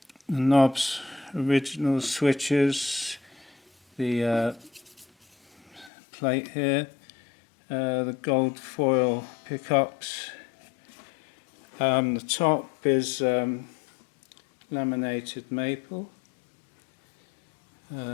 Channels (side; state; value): right; drops out; at 5.9 s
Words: knobs, original switches, the plate here, the gold foil pickups. The top is laminated maple,